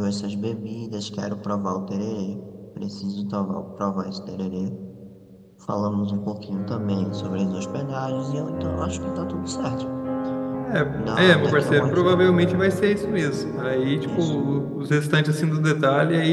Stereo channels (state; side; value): identical; both; correlation 1.00